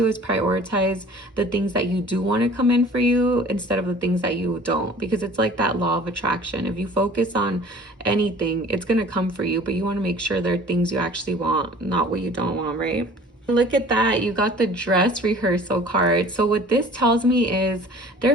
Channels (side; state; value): both; normal; correlation 0.47